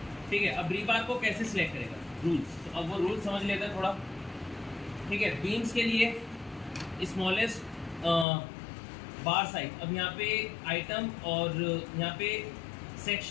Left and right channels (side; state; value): right; drops out; at 8.2 s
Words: ठीक है। अब रीबार को कैसे सिलेक्ट करेगा, रूल्स, तो अब वो रूल समझ लेते हैं थोड़ा, ठीक है। बीम्स के लिए स्मॉलेस्ट बार साइज, अब यहाँ पे आइटम और यहाँ पे